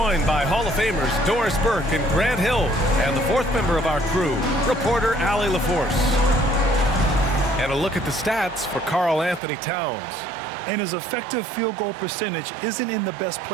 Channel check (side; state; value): left; drops out; at 9.4 s